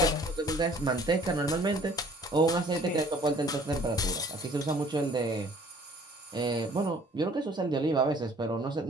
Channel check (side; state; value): both; normal; correlation 0.55